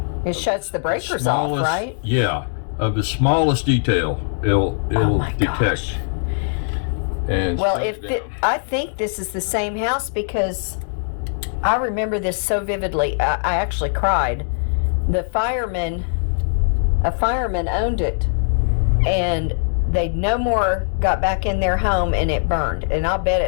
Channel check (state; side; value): silent; right; digital silence